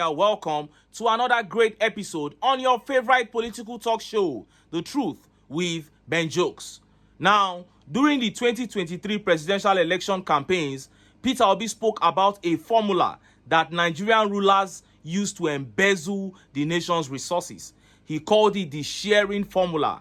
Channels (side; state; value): both; identical; correlation 1.00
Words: are welcome to another great episode on your favorite political talk show, The Truth with Ben Jokes. Now, during the 2023 presidential election campaigns, Peter Obi spoke about a formula that Nigerian rulers use to embezzle the nation's resources. He called it the sharing